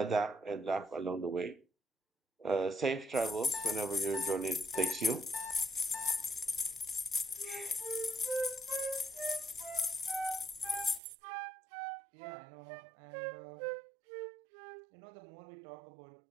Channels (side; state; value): left; drops out; at 11.0 s